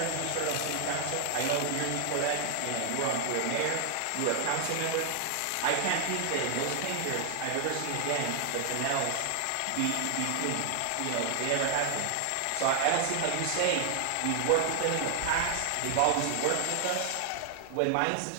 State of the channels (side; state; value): both; different; correlation 0.00